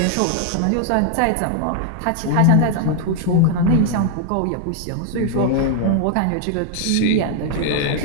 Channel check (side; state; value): both; different; correlation 0.00